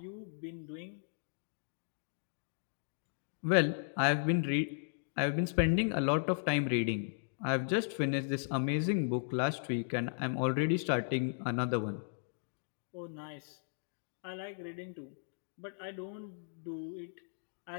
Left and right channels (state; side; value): silent; right; digital silence